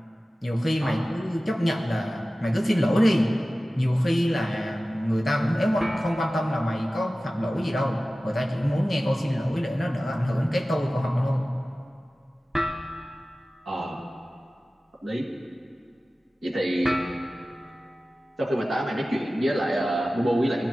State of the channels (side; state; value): both; normal; correlation 0.96